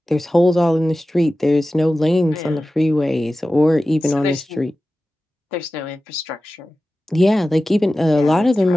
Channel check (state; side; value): normal; both; correlation 0.95